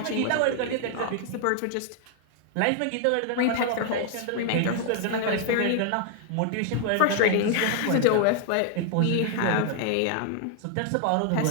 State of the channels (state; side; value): different; both; correlation 0.00